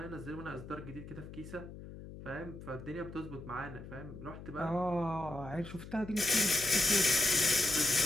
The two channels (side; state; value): left; noise; hum, 13 dB below the sound